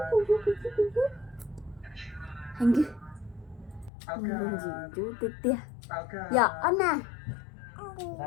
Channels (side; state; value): right; drops out; at 3.9 s